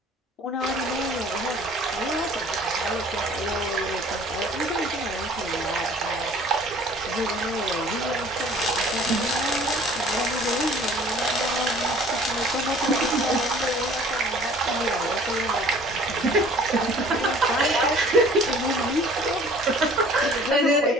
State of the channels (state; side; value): normal; both; correlation 0.51